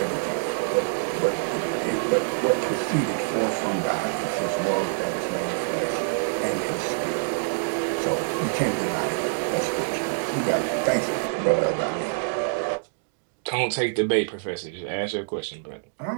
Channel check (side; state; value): left; silent; digital silence